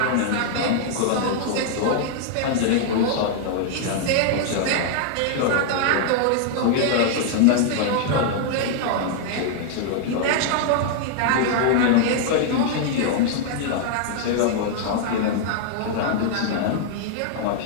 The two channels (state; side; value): different; both; correlation 0.00